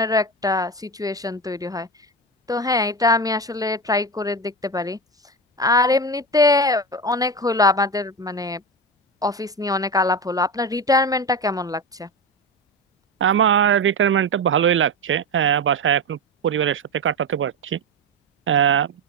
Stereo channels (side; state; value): both; normal; correlation 0.19